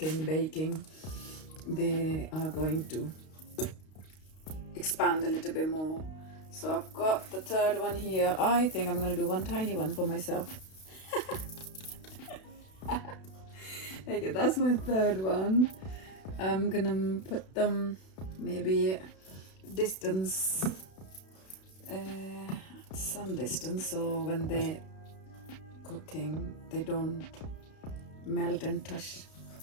baking, they are going to expand a little bit more. So I've got the third one here. I think I'm gonna do one tiny one for myself. Okay, that's my third one. I'm gonna put them maybe distance, some distance, so when they're cooking they don't melt and touch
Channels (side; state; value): right; late; 32 ms